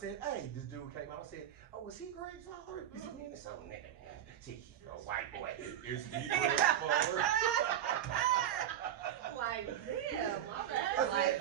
hey, this dude came out and said, oh, was he Greg's father? He said, man, it's so nigga. See, a white boy. Is he Greg's father? Like, damn. Like,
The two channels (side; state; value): left; quieter; 10.9 dB